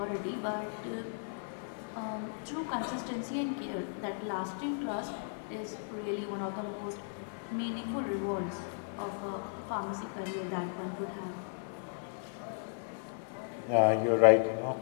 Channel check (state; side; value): silent; right; 54 dB below the other